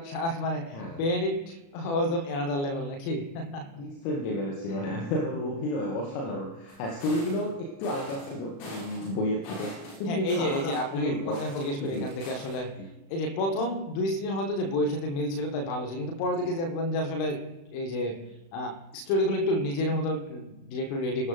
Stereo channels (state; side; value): late; right; 36 ms